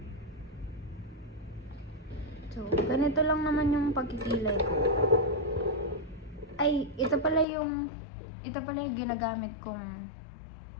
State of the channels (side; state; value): right; drops out; at 7.5 s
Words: So, ganito lang naman yung pagkikilay ko. Ay, ito pala yung ginagamit kong